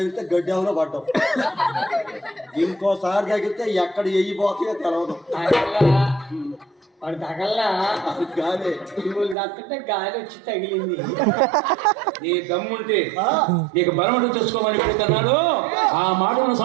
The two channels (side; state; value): left; drops out; at 9.3 s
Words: గడ్డెవరో పడ్డావు. ఇంకోసారి తగిలితే ఎక్కడ ఎయ్యిపోతాయో తెలవదు. వాడు తగల్లా గాలి తగ్గుతుంటే గాలి వచ్చి తగిలింది. నీ దమ్ముంటే నీకు బలమంటూ తెచ్చుకోమని పెడుతున్నాడు. ఆ మాటను